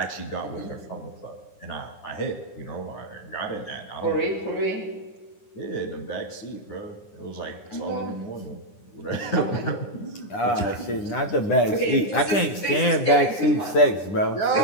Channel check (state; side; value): late; right; 9.9 ms